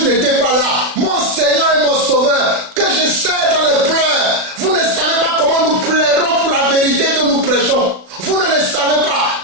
n'était pas là. Mon Seigneur et mon Sauveur, que je sais dans les pleurs. Vous ne savez pas comment nous plairons pour la vérité que nous prêchons. Vous ne le savez pas,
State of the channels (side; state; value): left; late; 36 ms